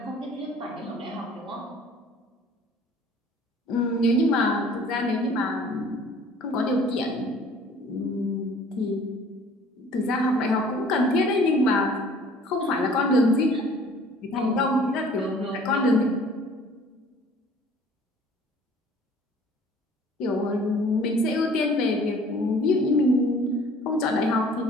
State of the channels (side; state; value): both; normal; correlation 0.52